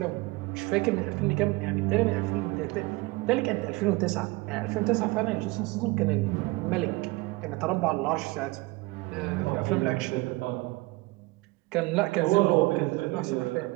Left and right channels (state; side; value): quieter; left; 22.6 dB